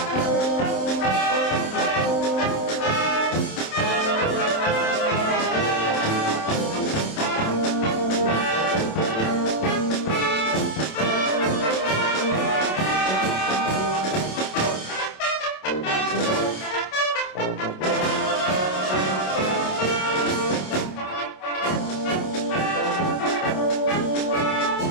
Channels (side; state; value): right; late; 27 ms